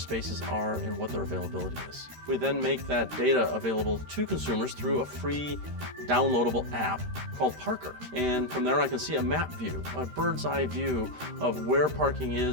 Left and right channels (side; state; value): left; late; 13 ms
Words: are and what their availability is. We then make that data available to consumers through a free downloadable app called Parker. And from there I can see a map view, a bird's eye view of where parking